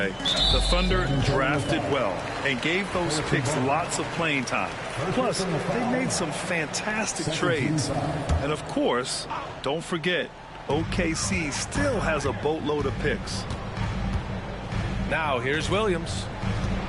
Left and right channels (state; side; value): identical; both; correlation 1.00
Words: The Thunder drafted well and gave those picks lots of playing time. Plus, they made some fantastic trades. And of course, don't forget, OKC still has a boatload of picks. Now here's Williams.